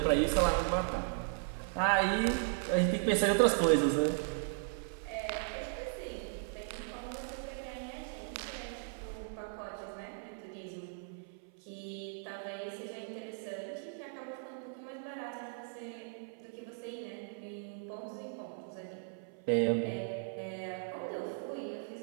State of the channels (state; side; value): silent; left; 53 dB below the other